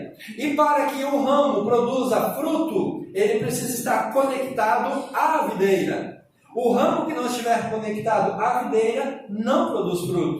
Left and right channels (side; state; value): both; identical; correlation 1.00